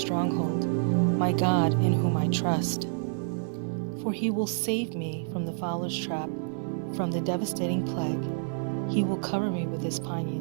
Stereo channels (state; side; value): silent; left; 59 dB below the other